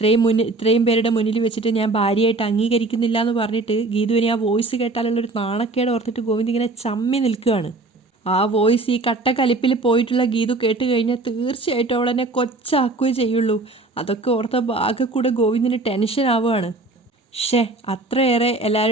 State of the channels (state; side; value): quieter; left; 3.2 dB